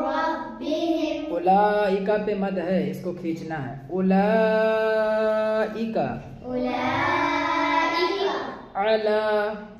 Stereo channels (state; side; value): identical; both; correlation 1.00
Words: ربهم. أولئك पे मद है, इसको खींचना है. أولئك أولئك على